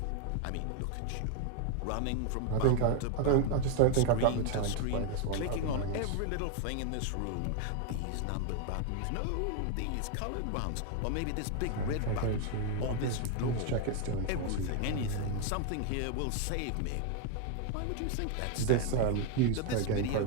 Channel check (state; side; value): different; both; correlation 0.01